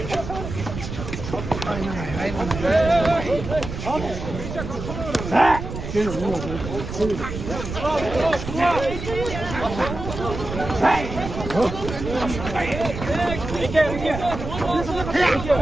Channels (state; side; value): noise; right; rumble, 7 dB below the sound